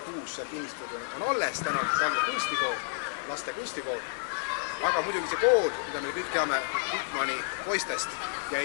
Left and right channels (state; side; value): silent; right; digital silence